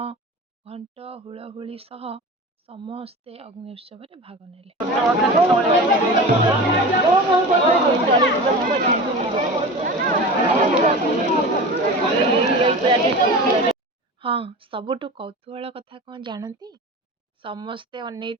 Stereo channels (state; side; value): normal; both; correlation 0.32